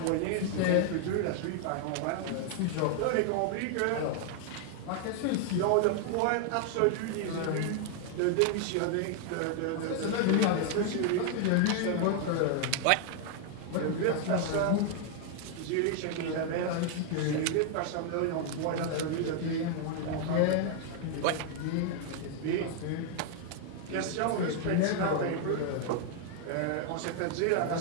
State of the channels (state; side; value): different; both; correlation 0.00